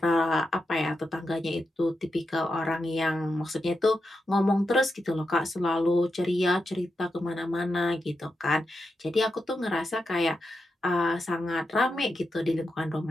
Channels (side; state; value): both; normal; correlation 0.88